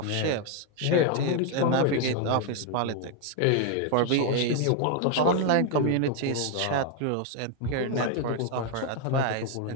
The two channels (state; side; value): different; both; correlation 0.01